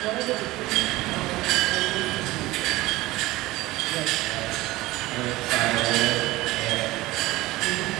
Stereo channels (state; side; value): quieter; left; 18.8 dB